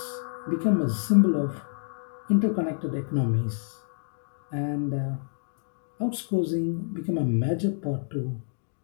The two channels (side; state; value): right; silent; digital silence